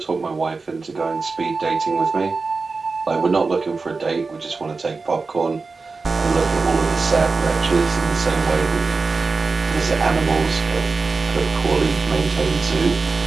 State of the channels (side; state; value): left; quieter; 4.2 dB